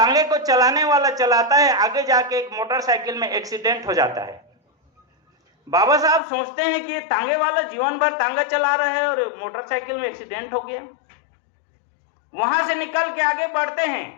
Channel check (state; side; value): drops out; right; at 6.2 s